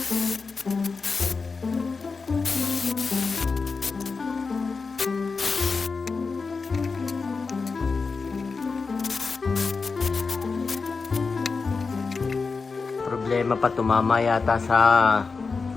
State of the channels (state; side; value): quieter; right; 4.5 dB